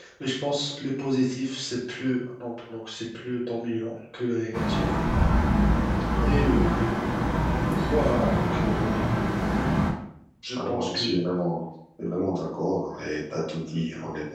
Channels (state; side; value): identical; both; correlation 1.00